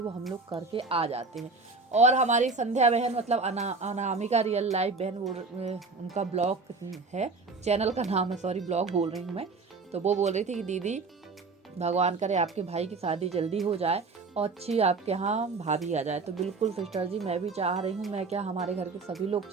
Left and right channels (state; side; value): quieter; left; 4.1 dB